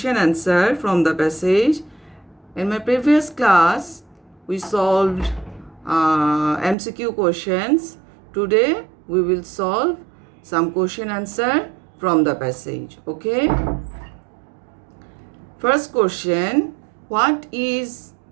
answer from the passage. In my previous class, we solved MCQ questions. Today, we will solve some question answer from the passage. Okay? First question, what is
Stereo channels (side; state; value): left; drops out; at 6.8 s